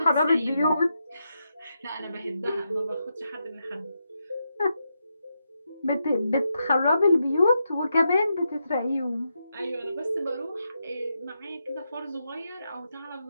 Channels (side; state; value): both; inverted; correlation -0.84